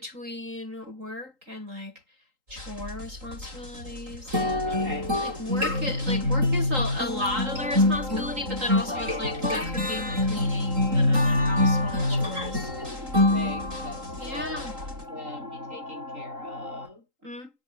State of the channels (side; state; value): left; late; 3.8 ms